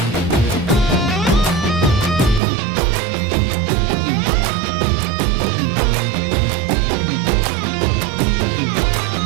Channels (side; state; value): left; drops out; at 2.4 s